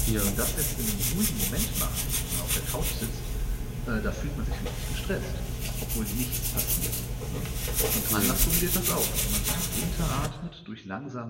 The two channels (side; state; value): both; identical; correlation 1.00